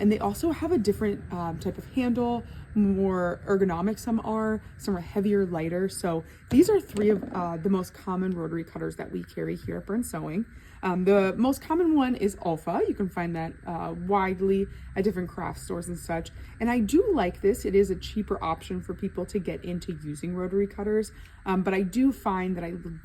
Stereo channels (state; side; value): identical; both; correlation 1.00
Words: they also have a different type of handle, more ergonomic some are heavier, lighter. So these are three of the most common rotary cutters that we carry here at Burn Sewing. The most common one is Alpha. You can find that widely at different craft stores and such. And I do like this. It is a cheaper option for people to get into using rotary cutters, but I do find that I